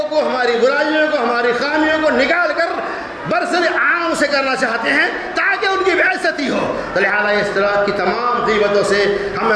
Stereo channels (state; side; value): identical; both; correlation 1.00